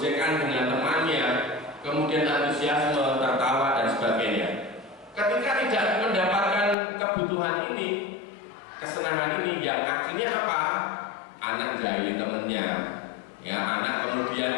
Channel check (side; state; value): right; drops out; at 6.8 s